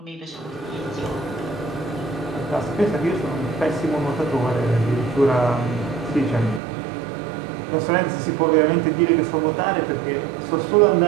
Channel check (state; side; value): drops out; left; at 6.6 s